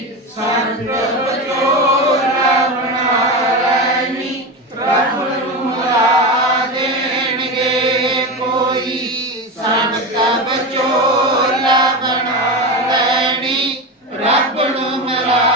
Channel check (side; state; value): both; normal; correlation 0.20